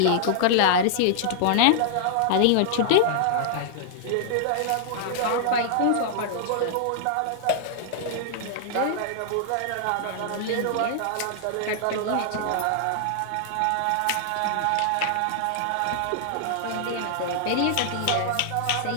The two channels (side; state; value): both; different; correlation -0.01